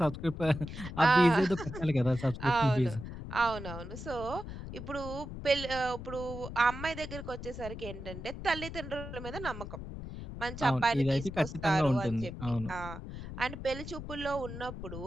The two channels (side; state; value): left; noise; rumble, 9 dB below the sound